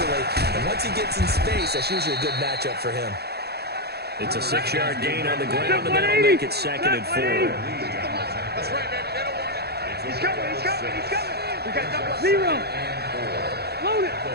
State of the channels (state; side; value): late; left; 0.47 ms